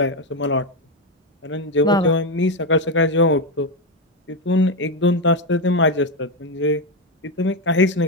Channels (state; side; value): normal; both; correlation 0.08